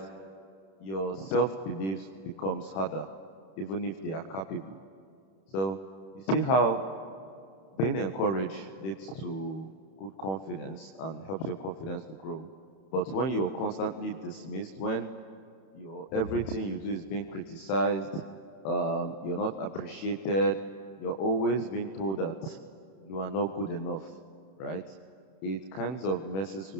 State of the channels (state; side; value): late; right; 31 ms